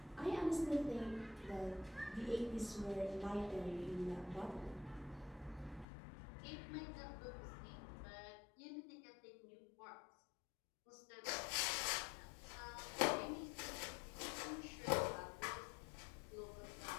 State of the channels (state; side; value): drops out; right; at 5.9 s